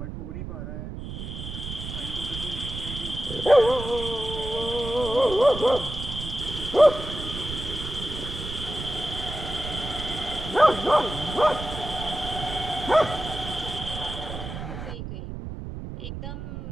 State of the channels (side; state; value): right; noise; rumble, 8 dB below the sound